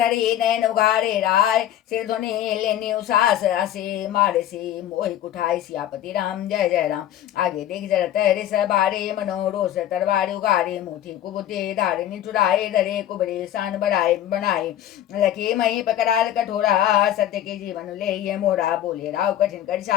नैन उघारे राय सिर ध्वनि लेने उसास असे मारे से मोहि कुठाई सियापति राम जय जय राम। आगे देख जरत रिस बारे मनोरोष तरवारी उगारे मुठी कुबुते धारे निठुराए धरे कुबरे सान बढ़ाए बनाए लखे मही पकड़ाल कठोरा सत्य के जीवन ले ये मोरा बोले राव कठिन कर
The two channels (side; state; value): right; quieter; 11.9 dB